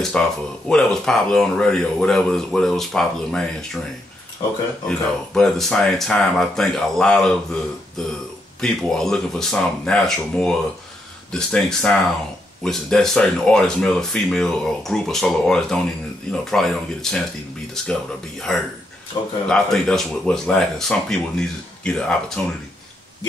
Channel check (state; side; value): normal; both; correlation 0.79